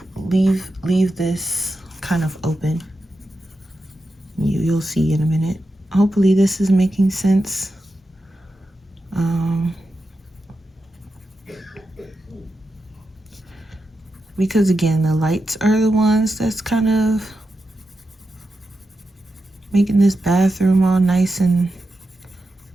in. Leave this kind of open. You'll see in a minute. Hopefully this is making sense. Because again, the lights are the ones that's kind of making this bathroom all nice and,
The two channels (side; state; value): both; normal; correlation 0.89